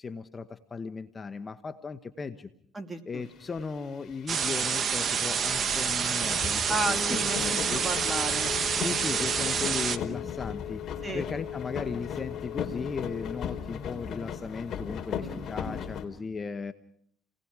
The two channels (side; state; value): both; normal; correlation 0.69